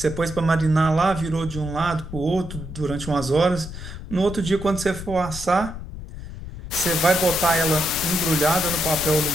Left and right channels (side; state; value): left; noise; rumble, 11 dB below the sound